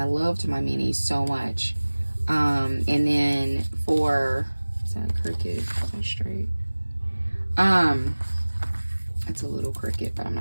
loved my mini so much. And then for, is that crooked? Is that straight? It's a little crooked, but I'm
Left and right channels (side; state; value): both; inverted; correlation -1.00